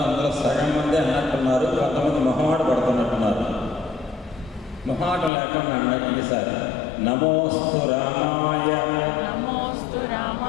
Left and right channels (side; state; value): right; drops out; at 5.3 s